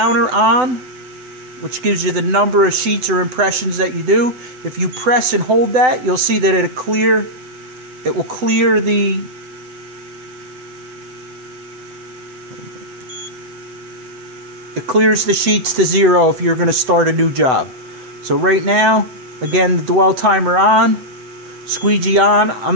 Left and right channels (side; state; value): left; late; 7.9 ms